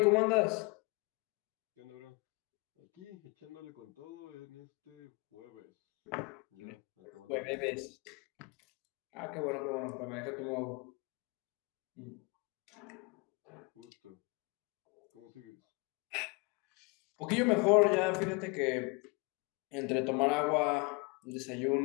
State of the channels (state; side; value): quieter; right; 29.1 dB